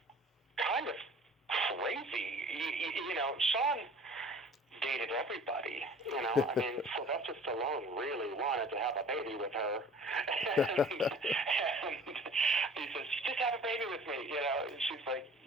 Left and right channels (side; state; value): both; normal; correlation 0.47